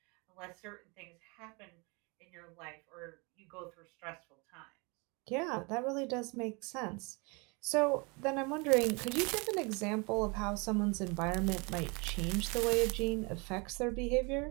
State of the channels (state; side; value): quieter; left; 29.7 dB